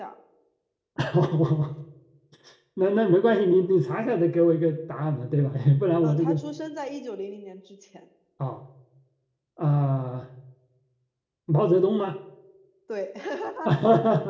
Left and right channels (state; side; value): identical; both; correlation 1.00